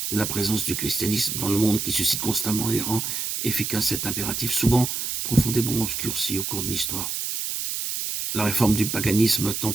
de la présence du christianisme dans le monde qui suscite constamment et rend efficace cet impératif, souvent profondément obscurci au cours de l'histoire. La réforme du paganisme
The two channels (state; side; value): noise; right; hiss, 3 dB below the sound